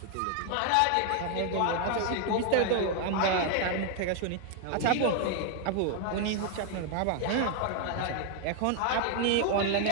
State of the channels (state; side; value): different; both; correlation 0.00